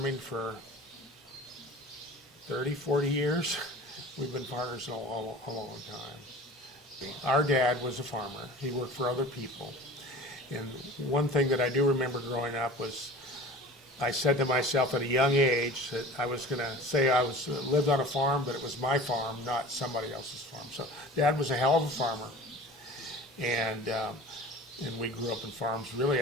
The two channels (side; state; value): both; normal; correlation 0.40